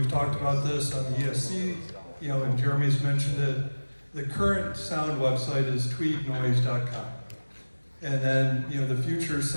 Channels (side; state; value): both; inverted; correlation -1.00